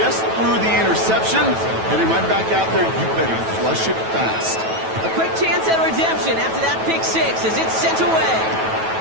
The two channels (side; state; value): left; late; 9.2 ms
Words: threw the interception, heading right back out there. You better flush it fast. A quick chance at redemption after that pick 6 as it's sent away.